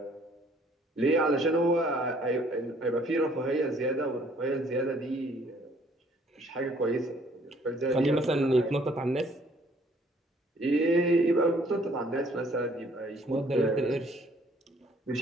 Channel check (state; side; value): normal; both; correlation 0.60